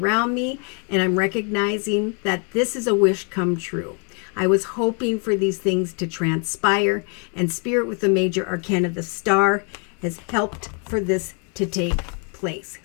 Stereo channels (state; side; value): quieter; right; 38.5 dB